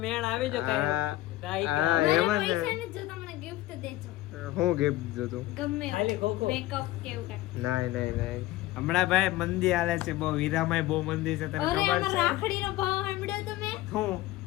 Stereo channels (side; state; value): right; quieter; 16.6 dB